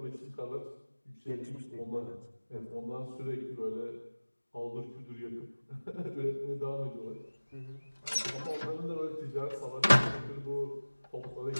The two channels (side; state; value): both; inverted; correlation -1.00